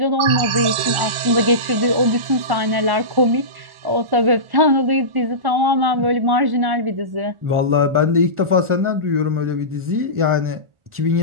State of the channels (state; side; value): late; left; 1.4 ms